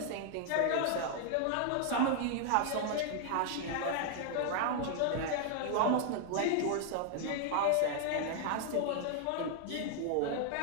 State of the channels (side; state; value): both; different; correlation 0.00